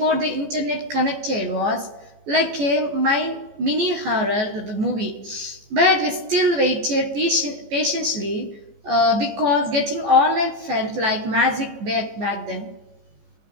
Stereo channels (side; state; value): left; late; 14 ms